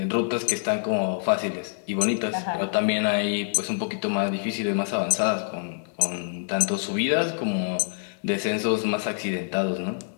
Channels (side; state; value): right; silent; digital silence